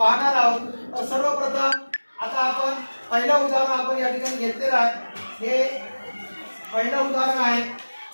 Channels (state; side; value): inverted; both; correlation -1.00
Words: आहोत. तर सर्वप्रथम आता आपण पहिलं उदाहरण आपण या ठिकाणी घेतलेलं आहे. हे पहिलं उदाहरण आहे,